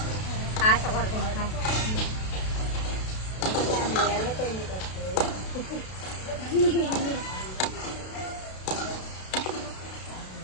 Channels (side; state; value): right; late; 32 ms